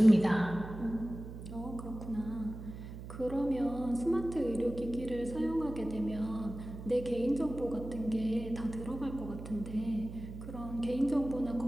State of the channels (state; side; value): noise; right; hum, 11 dB below the sound